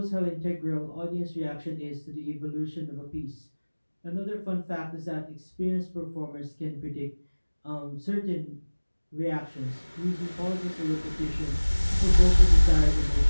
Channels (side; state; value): both; inverted; correlation -1.00